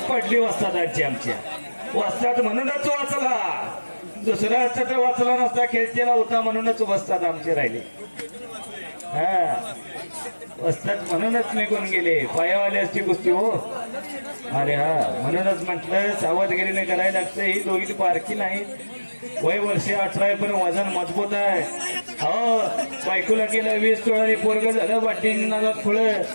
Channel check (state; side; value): inverted; both; correlation -1.00